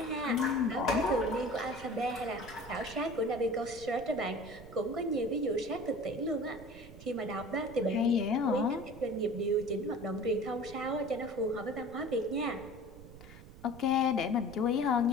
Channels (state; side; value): noise; right; rumble, 17 dB below the sound